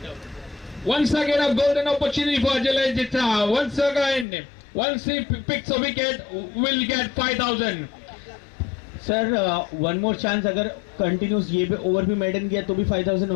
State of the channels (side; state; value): right; drops out; at 4.2 s